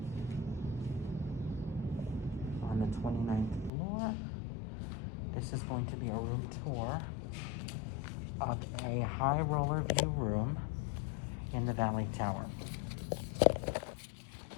on the 29th floor. This is going to be a room tour of a high roller view room in the Valley Tower.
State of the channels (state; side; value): drops out; right; at 3.7 s